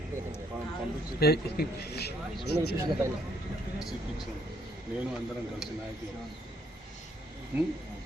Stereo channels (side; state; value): both; normal; correlation 0.70